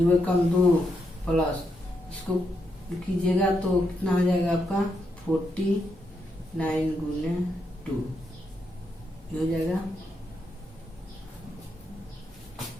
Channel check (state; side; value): normal; both; correlation 0.81